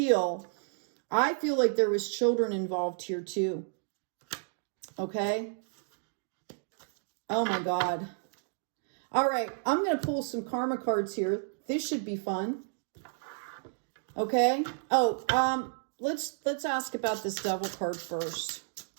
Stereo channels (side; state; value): left; silent; digital silence